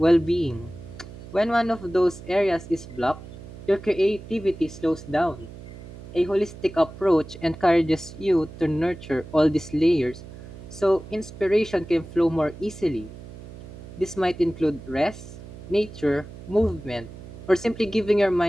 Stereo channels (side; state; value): right; noise; hum, 15 dB below the sound